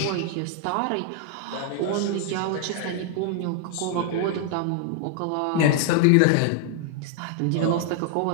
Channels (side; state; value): both; different; correlation 0.00